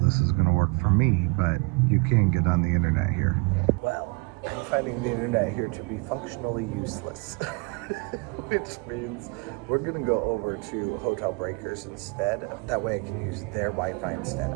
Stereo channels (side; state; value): left; quieter; 28.0 dB